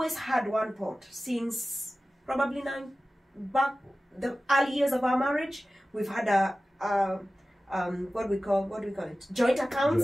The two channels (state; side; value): normal; both; correlation 0.96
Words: had one pot since probably the early years of our marriage. We've had what do we call it? Joint